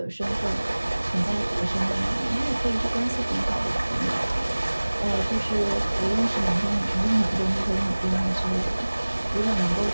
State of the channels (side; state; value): both; inverted; correlation -1.00